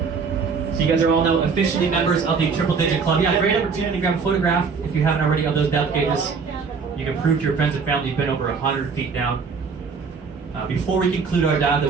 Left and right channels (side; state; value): left; quieter; 5.3 dB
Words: So you guys are all now officially members of the Triple Digit Club. Yeah, great opportunity to grab a photograph if you haven't already of those depth gauges. You can prove to your friends and family you've been over 100 feet down. Before we conclude our dive,